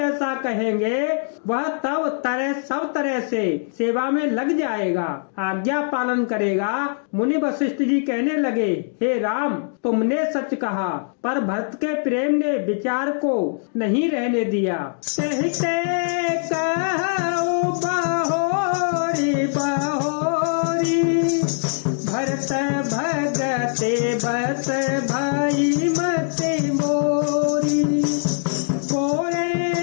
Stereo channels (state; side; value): silent; right; digital silence